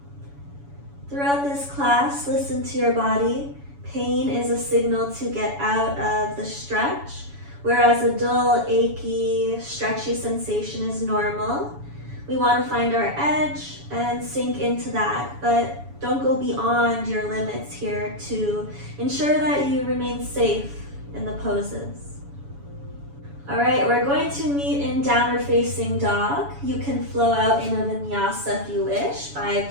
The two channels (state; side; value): late; left; 7.1 ms